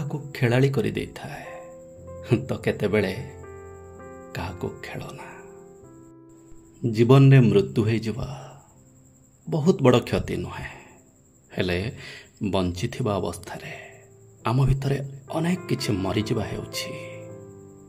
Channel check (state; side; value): identical; both; correlation 1.00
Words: ଖେଳାଳି କରିଦେଇଥାଏ ତ କେତେବେଳେ କାହାକୁ ଖେଳନା। ଜୀବନରେ ମୃତ୍ୟୁ ହେଇଯିବା ବହୁତ ବଡ଼ କ୍ଷତି ନୁହେଁ, ହେଲେ ବଞ୍ଚିଥିବା ଅବସ୍ଥାରେ ଆମ ଭିତରେ ଅନେକ କିଛି ମରିଯିବା ହେଉଛି